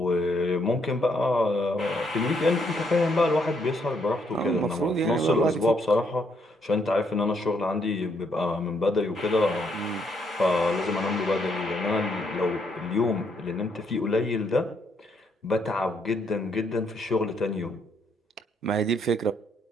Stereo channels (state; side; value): normal; both; correlation 0.73